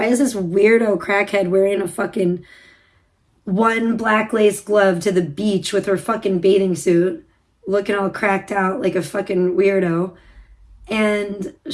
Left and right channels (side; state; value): both; identical; correlation 1.00